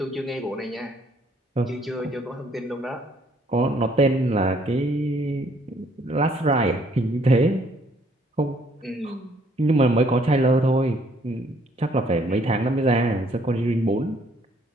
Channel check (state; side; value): normal; both; correlation 0.65